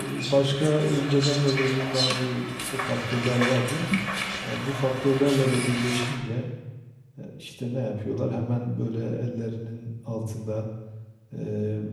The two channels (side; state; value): both; identical; correlation 1.00